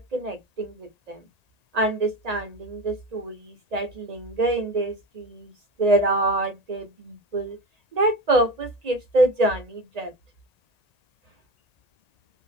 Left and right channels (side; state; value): left; late; 1.8 ms